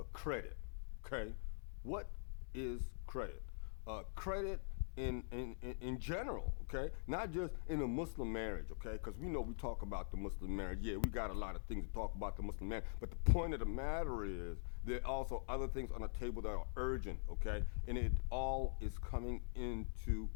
credit. Okay, what is credit? Credit in general. Okay, not just in a Muslim marriage. Okay, because we know we talk about the Muslim marriage. Yeah, we got a lot of things to talk about the Muslim marriage. But the point of the matter is there are also other things on the table that are urgent. Okay, and it all is coming into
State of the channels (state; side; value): silent; right; digital silence